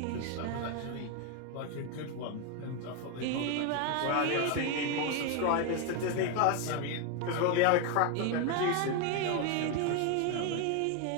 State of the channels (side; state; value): both; different; correlation 0.01